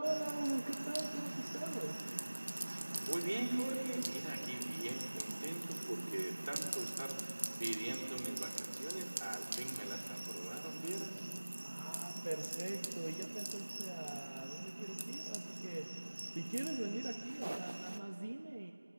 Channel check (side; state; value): both; inverted; correlation -1.00